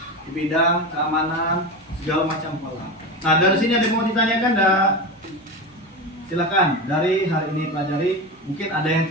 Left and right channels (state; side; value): normal; both; correlation 0.22